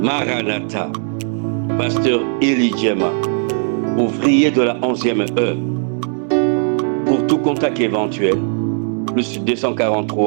Maranatha, pasteur Élie Djema, ouvrier de la 11e heure. Pour tout contact éventuel, plus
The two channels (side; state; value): left; silent; 56 dB below the other